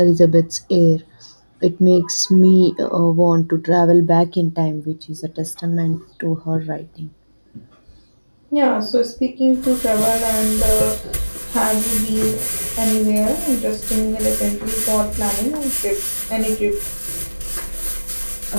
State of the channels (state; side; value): inverted; both; correlation -1.00